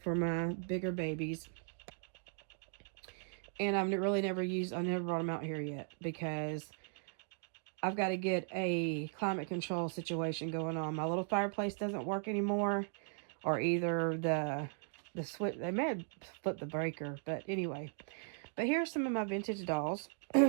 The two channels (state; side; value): silent; left; 53 dB below the other